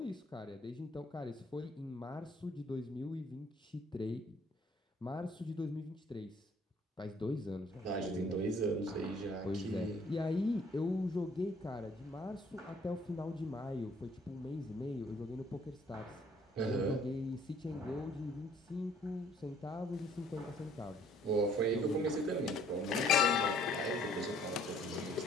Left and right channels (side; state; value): both; normal; correlation 0.60